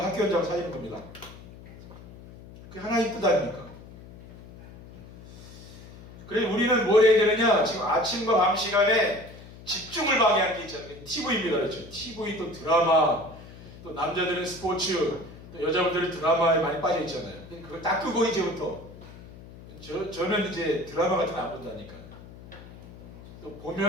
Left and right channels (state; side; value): noise; left; hum, 18 dB below the sound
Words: 학교 현장 살리는 겁니다. 그게 하나님 뜻 아닙니까? 그래서 우리는 뭘 해야 되느냐? 지금 아침과 밤 시간에 집중을 방해하는 게 있잖아요. TV입니다. 그렇죠? TV 또 드라마, 또 남자들은 스포츠, 또 여자분들은 드라마에 많이 빠져 있잖아요. 그걸 딱 끄고 이제부터 저는 이제 드라마 같은 거 안 본다니까요. 또